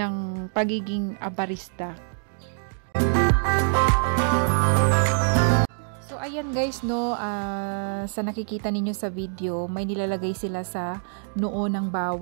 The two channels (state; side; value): silent; left; 57 dB below the other